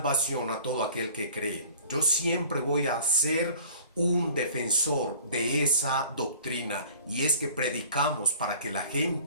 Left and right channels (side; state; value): both; inverted; correlation -0.48